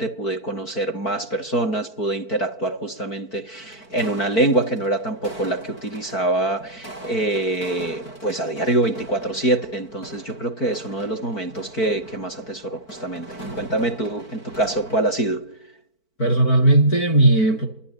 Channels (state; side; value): late; right; 4.5 ms